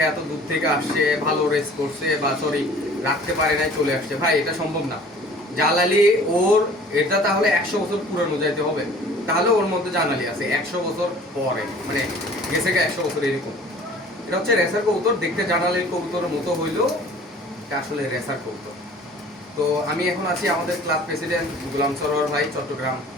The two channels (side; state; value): both; normal; correlation 0.48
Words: এত দূর থেকে আসছে, ভালো রেস করছে বা সরি রাখতে পারে নাই চলে আসছে। ভাই এটা সম্ভব না। জালালি ওর এটা তাহলে 100 বছর পুরানো যাইতে হবে, তাহলে ওর মধ্যে জালালি আছে 100 বছর পরে, মানে গেছে গে 100 বছর এরকম। এটা হচ্ছে রেসার কবুতর, দেখতে জালালির কবুতরের মতো হইলেও এটা আসলে রেসার কবুতর। তো আমি এখন আছি আমাদের ক্লাব প্রেসিডেন্ট গোলাম সরোয়ার ভাই, চট্টগ্রাম